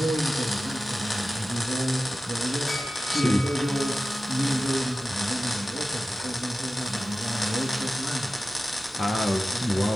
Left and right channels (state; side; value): normal; both; correlation 0.95